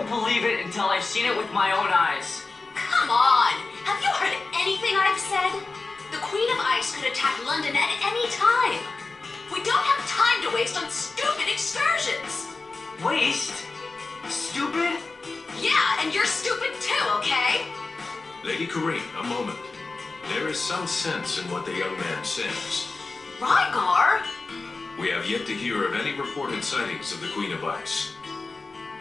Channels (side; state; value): right; quieter; 3.7 dB